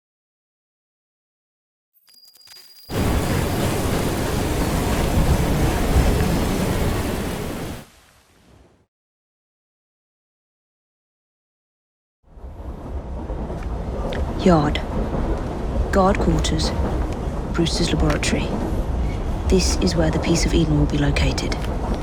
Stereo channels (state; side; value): identical; both; correlation 1.00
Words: Yard. Guard quarters. Brewster's laboratory. This is where the piece of Eden will be located.